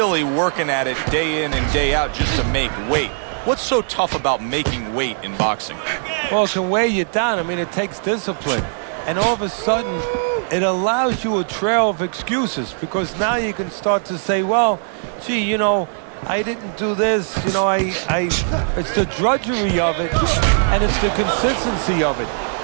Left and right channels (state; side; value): silent; left; 56 dB below the other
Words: working at it day in and day out just to make weight. What's so tough about making weight in boxing? Well, it can weigh you down. I mean, it takes discipline. And all of a sudden, it allows you a trail of excuses, because now you can start to say, well, gee, you know, I didn't do this, you know, it's the drudgery of it, and it's the consistency of it.